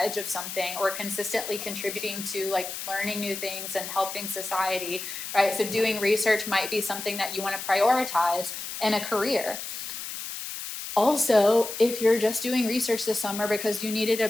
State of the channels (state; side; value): noise; left; hiss, 7 dB below the sound